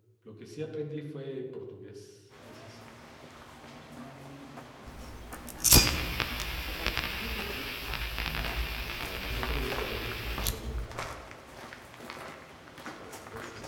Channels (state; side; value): identical; both; correlation 1.00